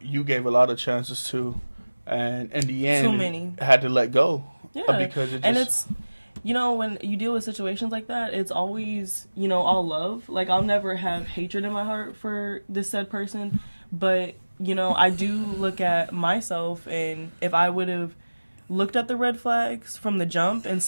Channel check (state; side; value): inverted; both; correlation -1.00